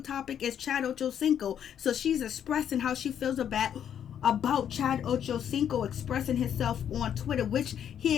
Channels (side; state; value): right; quieter; 9.2 dB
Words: topic is Chad Ochocinco. So she's expressing how she feels about Chad Ochocinco expressing himself on Twitter, which